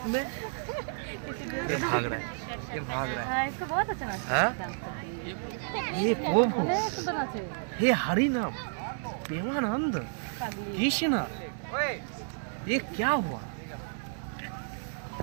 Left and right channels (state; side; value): silent; left; 57 dB below the other